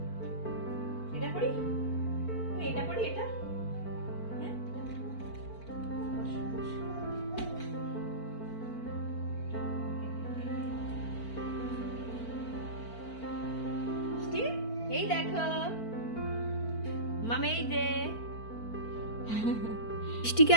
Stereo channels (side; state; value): right; late; 4.5 ms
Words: এটা পরি? এটা পরি? এটা হ্যাঁ, মিষ্টি এই দেখো মামা, এই যে মিষ্টিকে